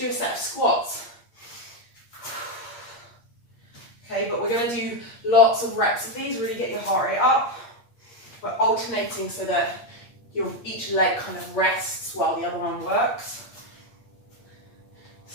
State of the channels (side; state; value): right; late; 8.6 ms